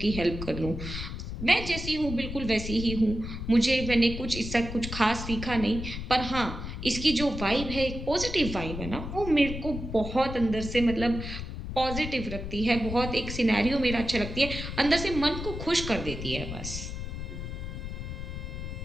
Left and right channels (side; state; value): left; noise; rumble, 7 dB below the sound